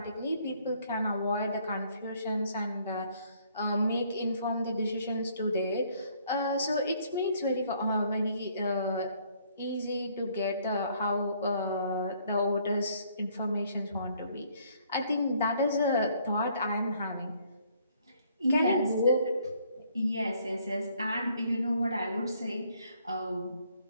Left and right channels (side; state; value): both; inverted; correlation -0.64